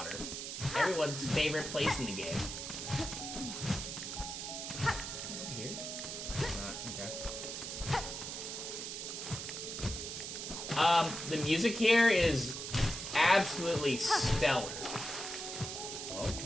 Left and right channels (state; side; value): noise; right; hiss, 6 dB below the sound